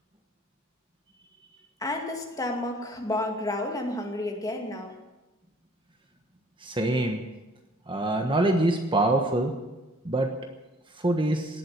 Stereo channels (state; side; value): normal; both; correlation 0.56